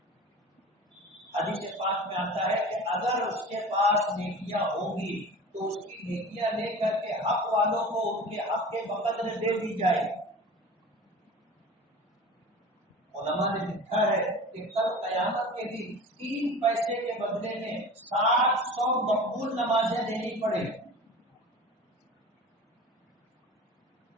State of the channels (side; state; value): both; normal; correlation 0.36